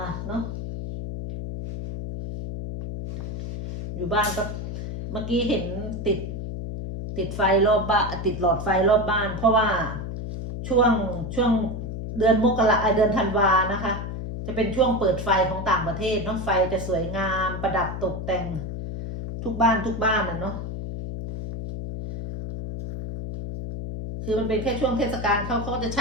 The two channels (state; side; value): noise; left; hum, 6 dB below the sound